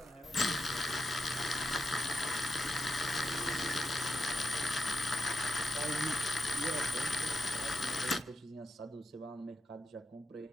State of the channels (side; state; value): both; normal; correlation 0.85